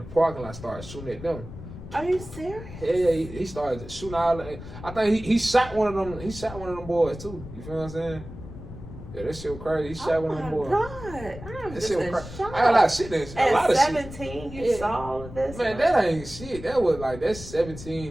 parking lot started shooting at them. Are you serious? Yeah, he started shooting all. I think he shot one of them. He shot one of them boys too. You feel what I'm saying? Yeah, that shit was crazy. He shot one of them boys. Oh my God, I'm just in shock. I got a lot of shit in At a lot of 17, shit. you saw all of this? Man, that ain't shit. That was like, that's 17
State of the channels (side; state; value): left; noise; rumble, 13 dB below the sound